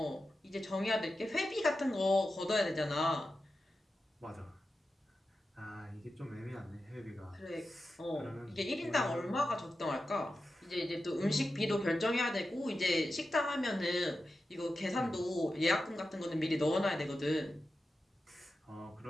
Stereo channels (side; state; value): both; normal; correlation 0.91